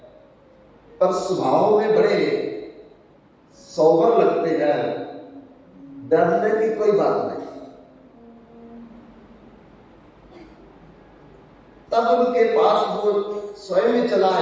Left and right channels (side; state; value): both; identical; correlation 1.00